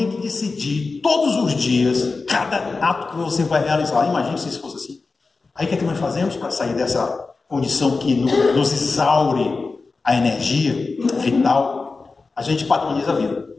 que decidir todos os dias, cada ato que você vai realizar. Imagine se isso fosse assim. Aí o que é que nós fazemos para sair dessa condição que nos exaure a energia vital? A gente padroniza a vida.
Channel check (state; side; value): quieter; right; 4.0 dB